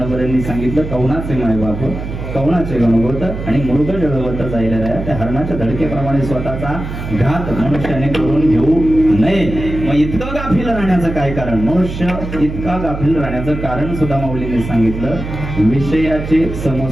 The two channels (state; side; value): noise; right; hum, 7 dB below the sound